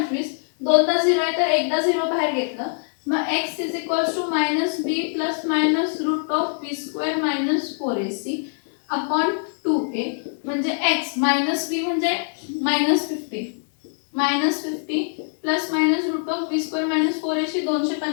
दोनदा 0 आहे तर एकदा 0 बाहेर घेतलं मग x is equals to minus b plus minus root of b square minus 4ac upon 2a म्हणजे x मायनस b म्हणजे minus 50 minus 50 plus minus root of b square minus 4ac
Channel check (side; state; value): right; silent; 57 dB below the other